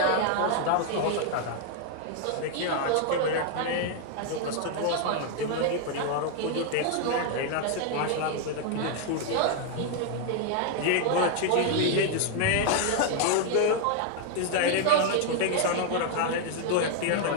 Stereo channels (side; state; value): both; different; correlation 0.00